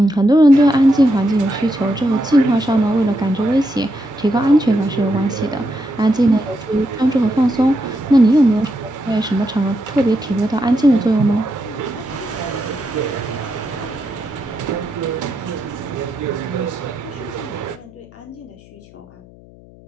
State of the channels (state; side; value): noise; left; hum, 23 dB below the sound